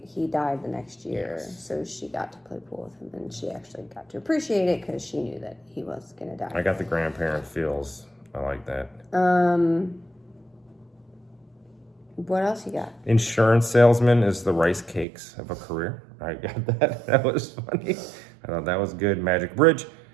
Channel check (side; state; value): left; drops out; at 15.1 s